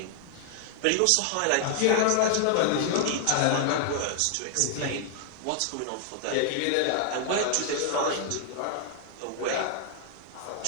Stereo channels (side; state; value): both; different; correlation 0.00